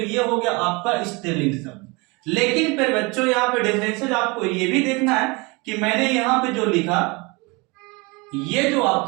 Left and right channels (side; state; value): left; quieter; 26.9 dB